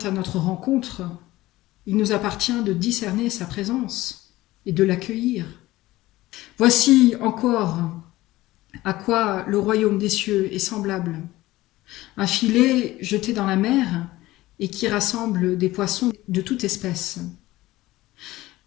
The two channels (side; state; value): right; quieter; 17.6 dB